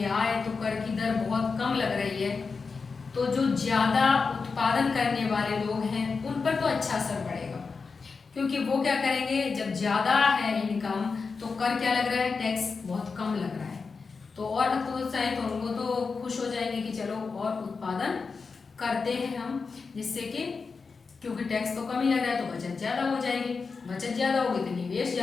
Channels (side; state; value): right; quieter; 4.8 dB